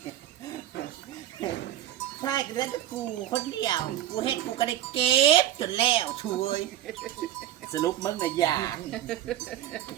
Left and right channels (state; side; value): quieter; left; 12.6 dB